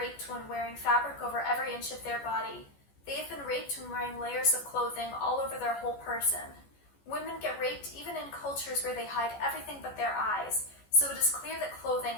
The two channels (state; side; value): late; right; 14 ms